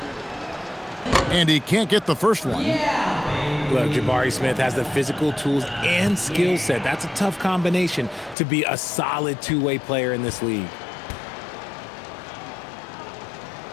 And he can't get the first one. Look, Jabari Smith has the physical tools and skill set. That's a tough combination to be a solid two-way player in this league.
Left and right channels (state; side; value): drops out; right; at 8.3 s